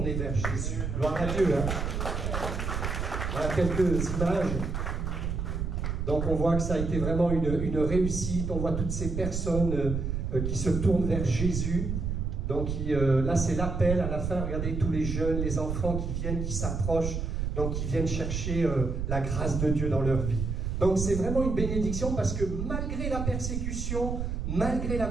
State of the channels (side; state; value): right; noise; rumble, 2 dB below the sound